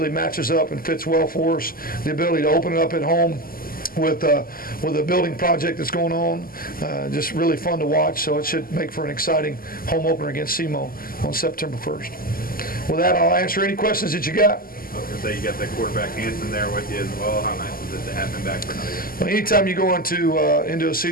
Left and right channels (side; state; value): right; late; 0.42 ms